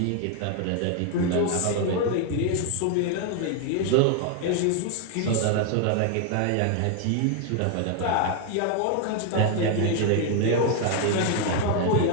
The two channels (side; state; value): both; different; correlation 0.01